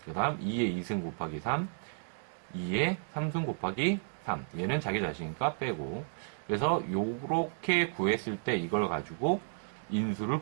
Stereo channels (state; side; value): silent; left; digital silence